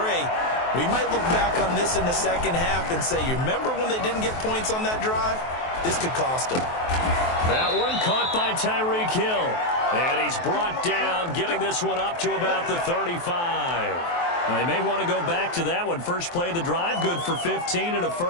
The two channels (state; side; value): late; right; 23 ms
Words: We might look back on this in the second half and say, you remember when they didn't get points on that drive? This could cost them. That one caught by Tyreek Hill. And he's brought down, getting this one up to about the 35. They may want to go back to that one. First play of the drive, good for 15 and a